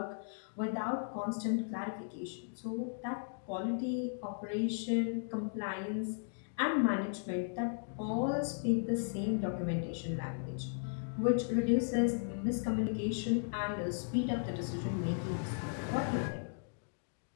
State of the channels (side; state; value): right; silent; digital silence